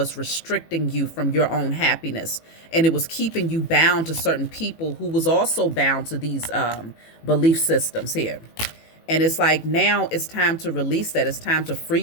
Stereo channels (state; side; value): late; right; 18 ms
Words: restricting you from your own happiness, and it was keeping you bound to certain people who was also bound to these belief systems here. And it's like now it's time to release that. It's time to free